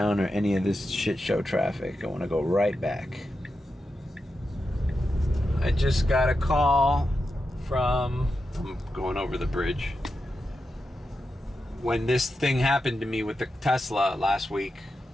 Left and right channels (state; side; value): normal; both; correlation 0.89